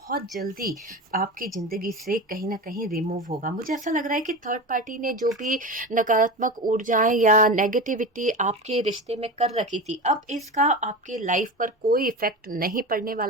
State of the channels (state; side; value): normal; both; correlation 0.26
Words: जल्दी आपकी जिंदगी से कहीं ना कहीं रिमूव होगा। मुझे ऐसा लग रहा है कि थर्ड पार्टी ने जो भी नकारात्मक ऊर्जाएं या नेगेटिविटी आपके रिश्ते में कर रखी थी, अब इसका आपके लाइफ पर कोई इफेक्ट नहीं पड़ने